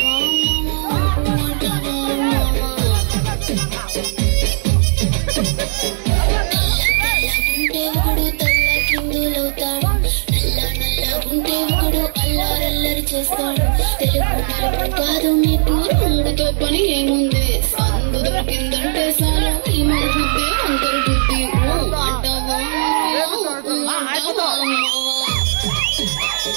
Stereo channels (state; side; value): silent; left; digital silence